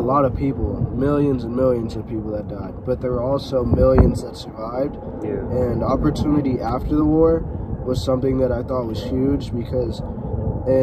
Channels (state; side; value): identical; both; correlation 1.00